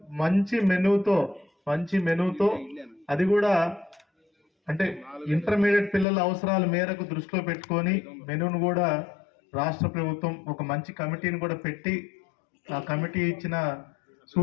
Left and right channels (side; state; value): right; drops out; at 6.1 s